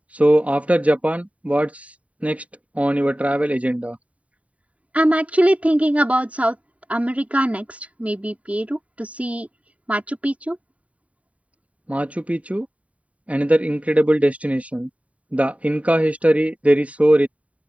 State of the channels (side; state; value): left; late; 0.067 ms